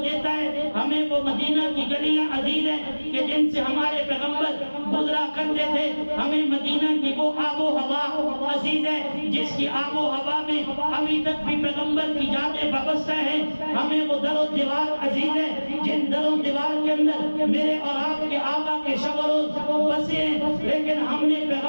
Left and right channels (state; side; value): inverted; both; correlation -1.00